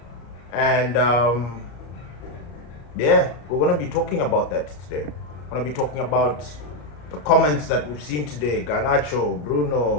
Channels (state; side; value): late; right; 34 ms